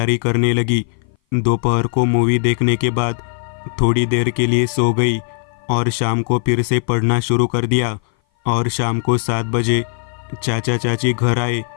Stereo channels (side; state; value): right; silent; 58 dB below the other